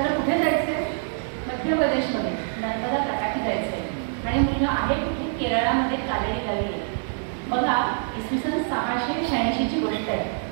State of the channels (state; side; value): silent; left; digital silence